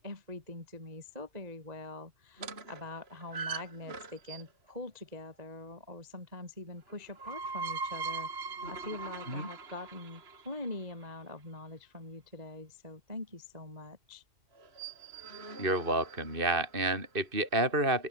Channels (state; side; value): late; left; 2.6 ms